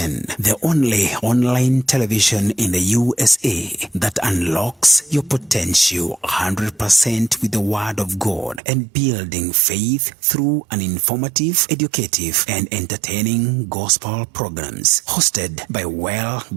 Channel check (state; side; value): drops out; left; at 8.6 s